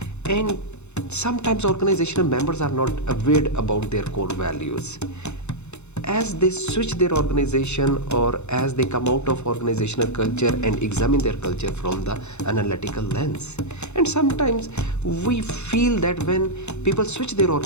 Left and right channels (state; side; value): late; right; 0.82 ms